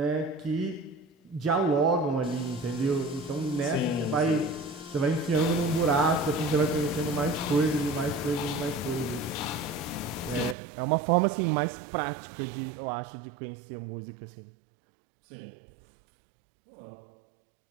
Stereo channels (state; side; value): drops out; left; at 10.6 s